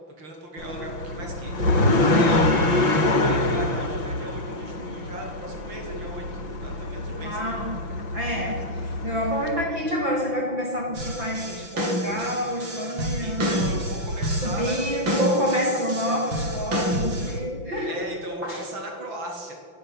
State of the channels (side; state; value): left; late; 5.9 ms